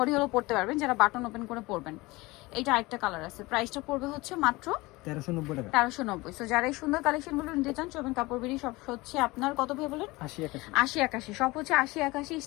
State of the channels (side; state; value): right; quieter; 21.8 dB